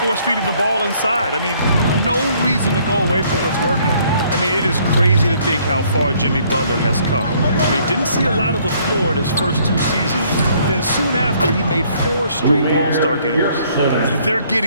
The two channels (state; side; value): inverted; both; correlation -0.63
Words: the ball inside. I mean, no reason to go away from what's working. I mean, it is crazy to think how far Jimmy Butler has come. I mean, didn't see a lot of the floor in his first 2 seasons. Then soon after, he made 4 straight All-Star games. They're